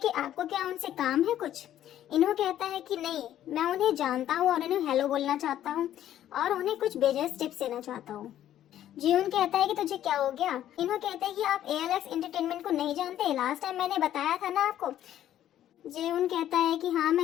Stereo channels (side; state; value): right; quieter; 11.8 dB